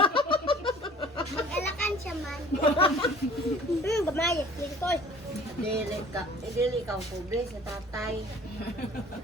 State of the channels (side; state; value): both; normal; correlation 0.49